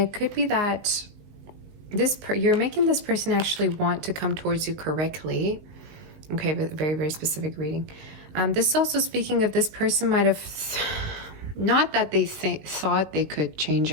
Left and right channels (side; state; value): left; late; 20 ms